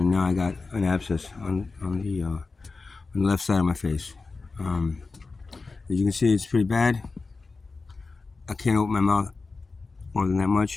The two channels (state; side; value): quieter; right; 4.0 dB